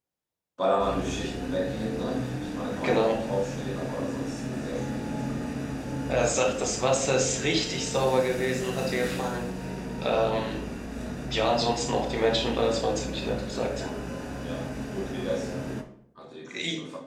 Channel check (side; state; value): both; identical; correlation 1.00